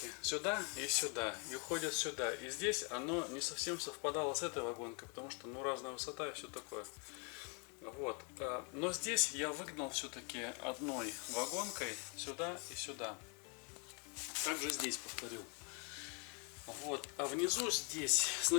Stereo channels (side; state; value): right; quieter; 35.9 dB